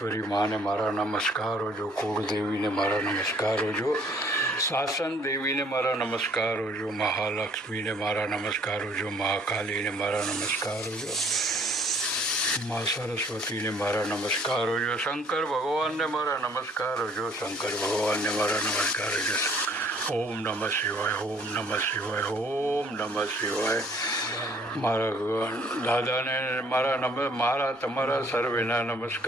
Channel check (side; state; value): both; normal; correlation 0.60